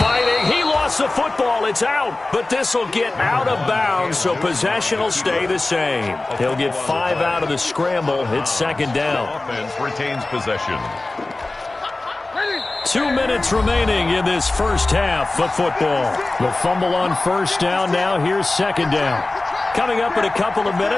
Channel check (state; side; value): quieter; right; 3.0 dB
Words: He lost the football. It's out. But this will get out of bounds, so possession will stay the same. He'll get 5 out of the scramble. It's 2nd down. Offense retains possession. 2 minutes remaining in this first half of football. The fumble on 1st down. Now here's 2nd down. Coming up in a couple of